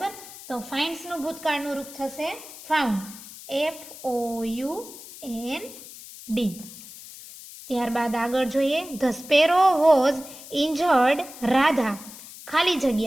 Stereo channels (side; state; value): left; noise; hiss, 16 dB below the sound